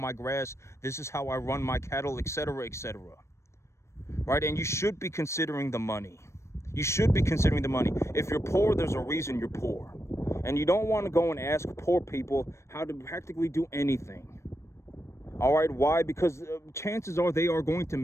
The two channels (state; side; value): late; right; 0.13 ms